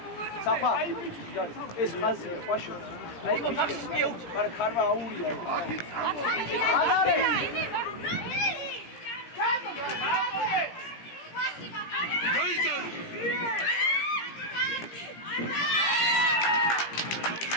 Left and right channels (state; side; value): late; right; 17 ms